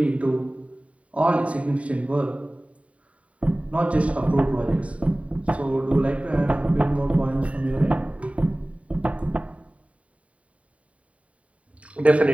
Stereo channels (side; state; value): left; late; 0.066 ms